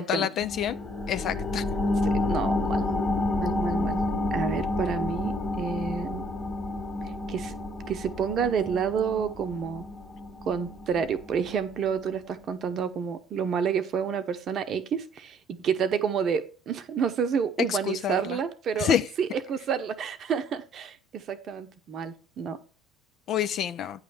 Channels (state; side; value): normal; both; correlation 0.61